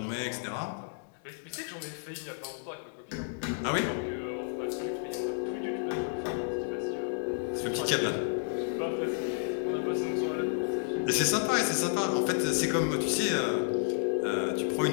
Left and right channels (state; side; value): silent; right; digital silence